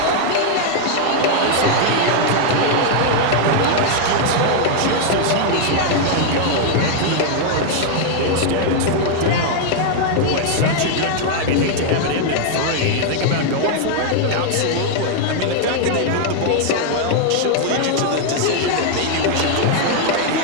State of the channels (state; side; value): different; both; correlation 0.00